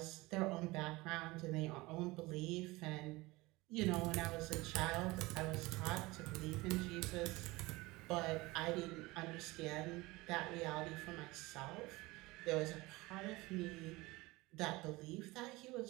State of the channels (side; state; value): left; quieter; 21.6 dB